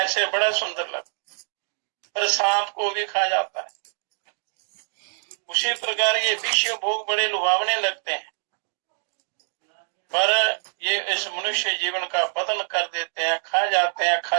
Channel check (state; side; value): silent; left; digital silence